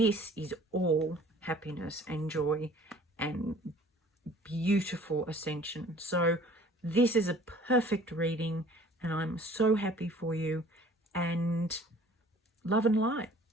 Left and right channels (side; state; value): both; normal; correlation 0.51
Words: is all happiness and joy and beautiful ascension. So this is a perfect reading, and I'm so happy for you, and love and light.